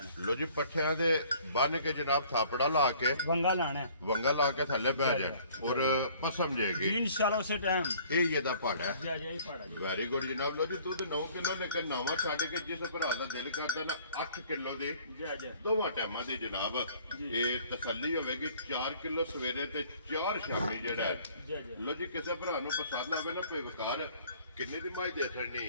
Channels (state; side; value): inverted; both; correlation -0.55